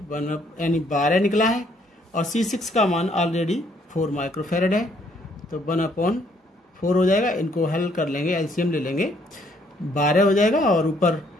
यानी 12 निकला है और C6 का मान ऑलरेडी 4 माइक्रोफैरड है। तो 1/4 हो जाएगा, इनको हल कर लेंगे, एलसीएम ले लेंगे, 12 हो जाएगा और ऊपर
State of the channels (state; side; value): normal; both; correlation 0.67